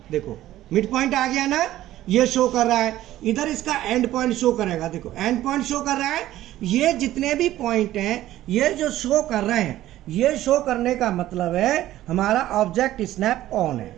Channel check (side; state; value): left; quieter; 14.3 dB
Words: देखो मिड पॉइंट आ गया ना, ये शो कर रहा है। इधर इसका एंड पॉइंट शो करेगा, देखो एंड पॉइंट शो कर रहा है। ये जितने भी पॉइंट हैं ये जो शो कर रहे हैं, ये शो करने का मतलब है हमारा ऑब्जेक्ट स्नैप ऑन है।